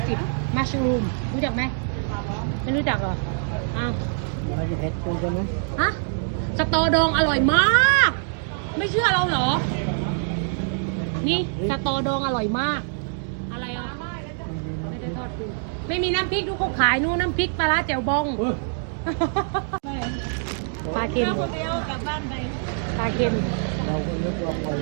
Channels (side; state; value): left; silent; digital silence